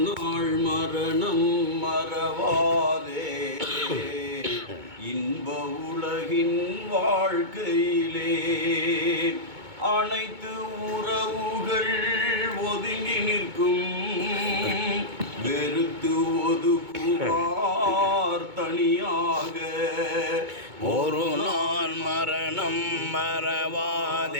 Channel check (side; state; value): left; late; 2.2 ms